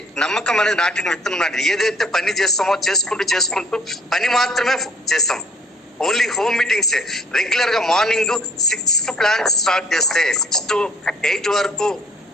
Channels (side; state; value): both; normal; correlation 0.57